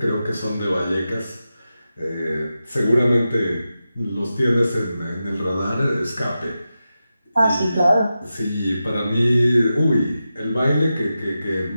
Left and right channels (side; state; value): both; inverted; correlation -0.91